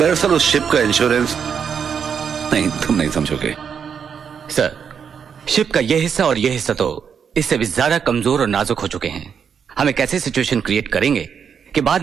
उस शिप का इंश्योरेंस नहीं, तुम नहीं समझोगे। सर, शिप का ये हिस्सा और ये हिस्सा तो इससे भी ज्यादा कमजोर और नाजुक हो चुके हैं। हम एक ऐसी सिचुएशन क्रिएट करेंगे कि बाद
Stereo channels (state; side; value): quieter; left; 7.1 dB